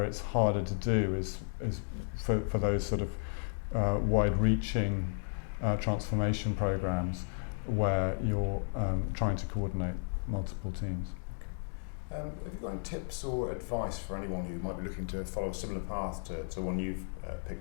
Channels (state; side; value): silent; right; digital silence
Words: it's harder to do is for those sort of wide-reaching transformation programs where you're trying to coordinate multiple teams. Have you got any tips or advice for anyone who might be looking to follow a similar path to one you've